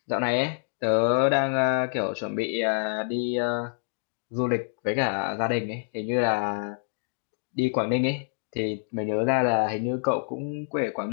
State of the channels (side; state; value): right; silent; digital silence